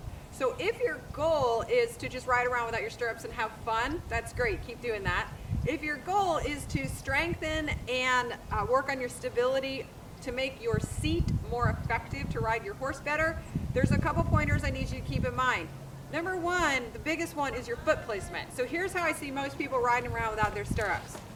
So if your goal is to just ride around without your stirrups and have fun, that's great. Keep doing that. If your goal is to strengthen and work on your stability to make your seat more effective to ride your horse better, there's a couple pointers I need you to keep in mind. Number one, the biggest one, is your foot placement. So here's how I see most people riding around without their stirrups.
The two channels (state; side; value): identical; both; correlation 1.00